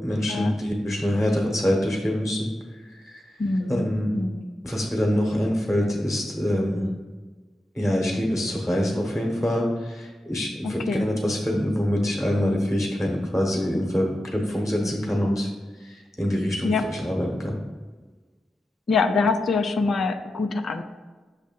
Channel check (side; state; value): both; normal; correlation 0.90